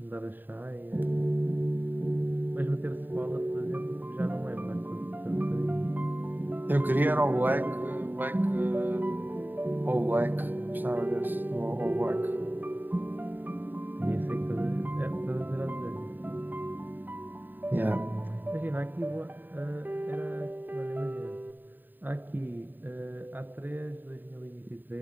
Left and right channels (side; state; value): left; late; 0.091 ms